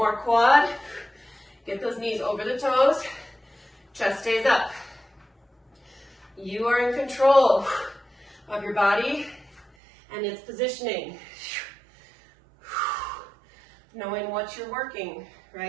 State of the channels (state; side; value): drops out; left; at 9.7 s